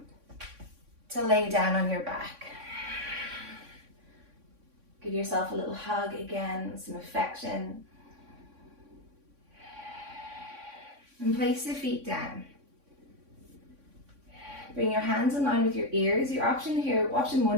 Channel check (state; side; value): late; left; 3.6 ms